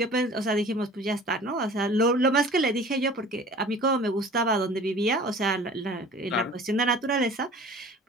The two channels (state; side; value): normal; both; correlation 0.45